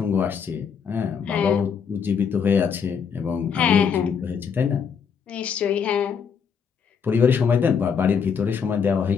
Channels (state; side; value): quieter; right; 6.7 dB